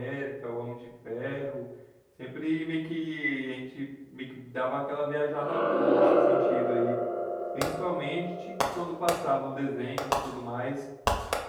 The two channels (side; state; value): both; identical; correlation 1.00